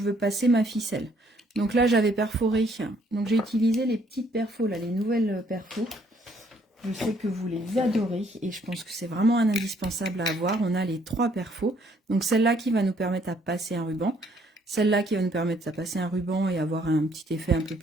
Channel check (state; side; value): normal; both; correlation 0.66